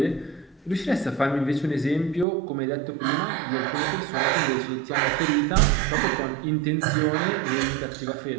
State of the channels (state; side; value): drops out; left; at 2.2 s